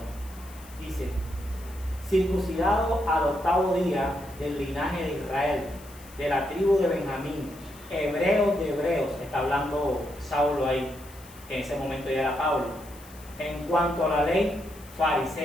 Dice, circuncidado al 8º día del linaje de Israel, de la tribu de Benjamín, hebreos de hebreos, está hablando Saulo ahí, que en ese momento ya era Pablo. En cuanto a la ley,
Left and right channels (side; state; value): left; noise; hiss, 21 dB below the sound